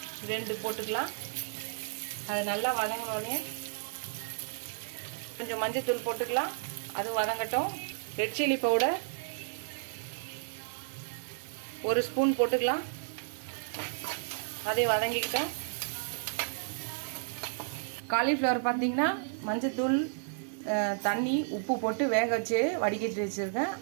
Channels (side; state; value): left; silent; digital silence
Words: 2 போட்டுக்கலாம். அது நல்லா வதங்கினோடனே கொஞ்சம் மஞ்சள்தூள் போட்டுக்கலாம். அது வதங்கட்டும். ரெட் சில்லி பவுடர் 1 ஸ்பூன் போட்டுக்கலாம். அதை வதங்கிக்கிட்டோம். காலிஃப்ளவர் பார்த்தீங்கன்னா மஞ்சத்தூள் தண்ணி உப்பு போட்டு வேக வச்சு வடிகட்டி வச்சுருக்கேன்.